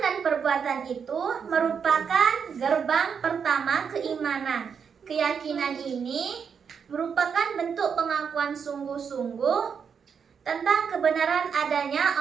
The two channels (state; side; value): quieter; left; 6.7 dB